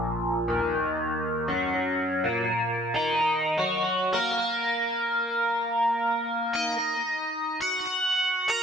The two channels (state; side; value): normal; both; correlation 0.60